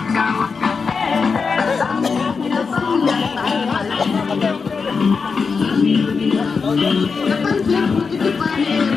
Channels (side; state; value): right; quieter; 5.1 dB